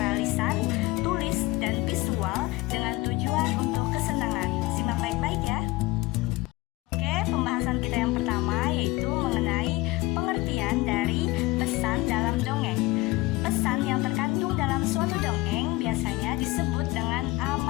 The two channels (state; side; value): quieter; right; 20.7 dB